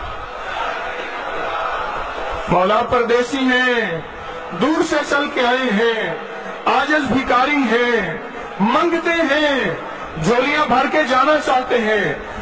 مولا پردیسی ہیں، دور سے چل کے آئے ہیں، عاجز بھکاری ہیں، منگتے ہیں، جھولیاں بھر کے جانا چاہتے ہیں،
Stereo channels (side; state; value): both; identical; correlation 1.00